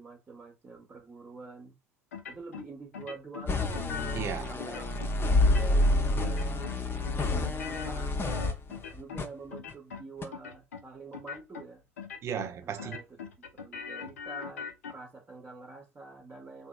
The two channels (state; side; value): normal; both; correlation 0.51